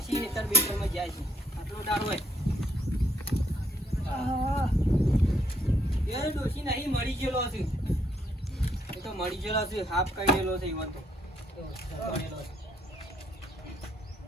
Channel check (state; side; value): normal; both; correlation 0.70